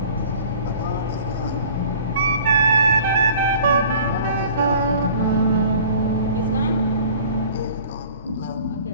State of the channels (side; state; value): both; inverted; correlation -0.47